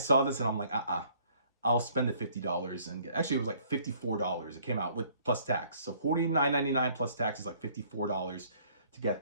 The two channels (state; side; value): inverted; both; correlation -0.59